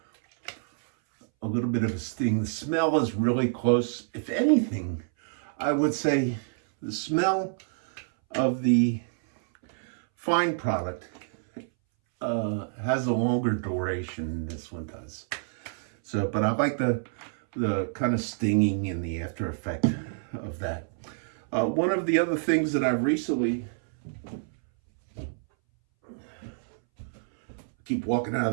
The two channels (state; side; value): silent; left; 60 dB below the other